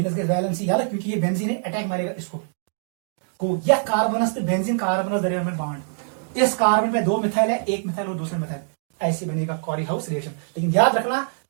वैलेंसी याद है, क्योंकि ये बेंजीन है, अटैक मारेगा इसको को, यह कार्बनस से बेंजीन कार्बनस दरमियान में बॉन्ड, इस कार्बन पे 2 मिथाइल है, एक मिथाइल और दूसरे मिथाइल, ऐसे बनेगा कॉरी हाउस रिएक्शन। लेकिन याद रखना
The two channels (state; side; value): silent; left; 63 dB below the other